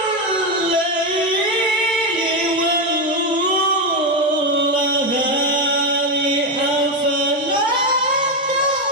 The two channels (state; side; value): normal; both; correlation 0.09